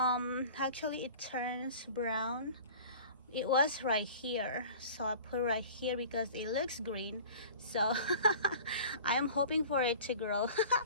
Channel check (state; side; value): inverted; both; correlation -0.42